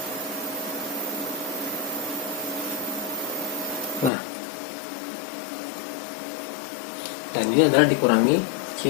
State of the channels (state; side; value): drops out; right; at 4.1 s